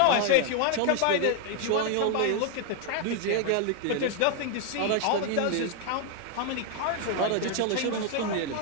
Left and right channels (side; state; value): both; different; correlation 0.00